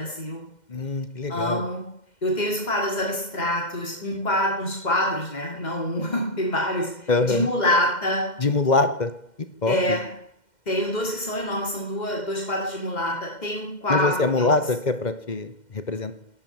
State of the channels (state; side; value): late; right; 2.1 ms